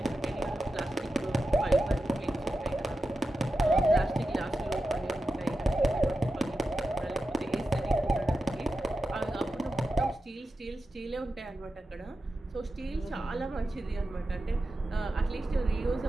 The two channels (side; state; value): both; normal; correlation 0.91